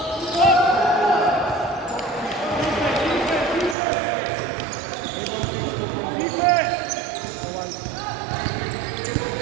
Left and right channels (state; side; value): drops out; left; at 3.8 s